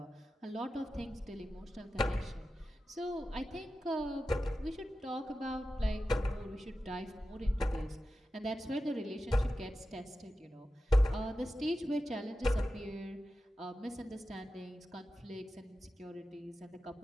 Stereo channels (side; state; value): both; normal; correlation 0.93